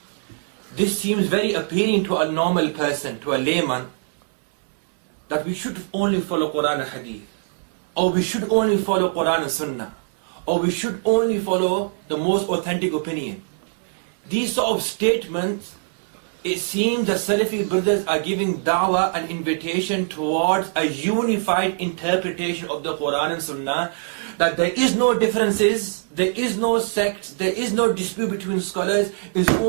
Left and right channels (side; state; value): left; silent; digital silence